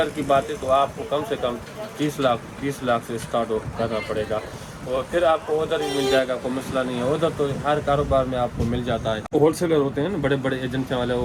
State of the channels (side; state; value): both; identical; correlation 1.00